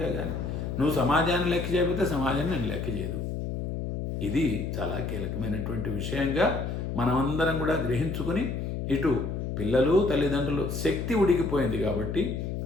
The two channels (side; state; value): left; noise; hum, 3 dB below the sound